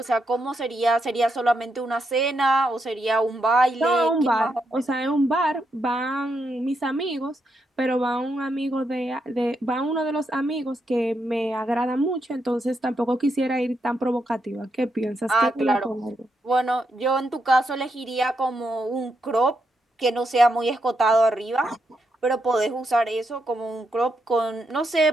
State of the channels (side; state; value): both; normal; correlation 0.81